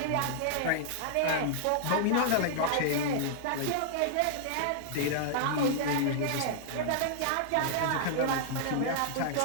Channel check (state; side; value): different; both; correlation -0.01